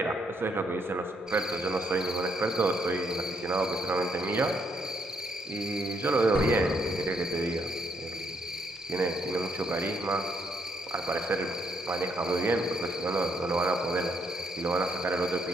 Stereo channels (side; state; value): both; normal; correlation 0.73